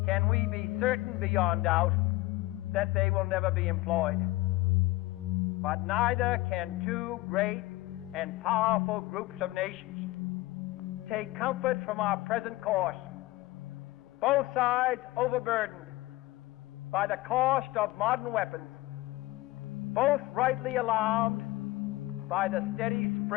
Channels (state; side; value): quieter; right; 19.1 dB